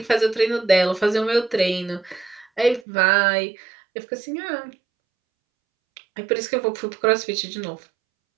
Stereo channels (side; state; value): left; drops out; at 2.9 s